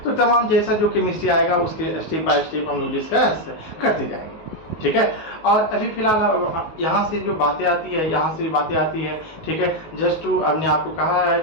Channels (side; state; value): right; late; 19 ms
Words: तो तमाम जैसा जो केमिस्ट्री आएगा उसके स्टेप बाय स्टेप हम लोग डिस्कस करते जाएंगे, ठीक है। और अभी फिलहाल यहाँ से जो बातें आती है, यहाँ से बातें आती है, ठीक है। जस्ट टू हमने आपको कहा है,